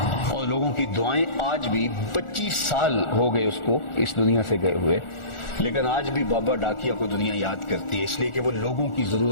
اور لوگوں کی دعائیں آج بھی 25 سال ہو گئے اس کو اس دنیا سے گئے ہوئے، لیکن آج بھی بابا ڈاکیا کو دنیا یاد کرتی ہے، اس لیے کہ وہ لوگوں کی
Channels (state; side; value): late; right; 1.4 ms